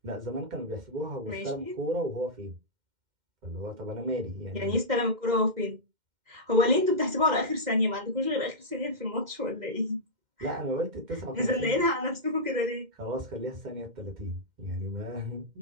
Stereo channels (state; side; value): late; left; 2.1 ms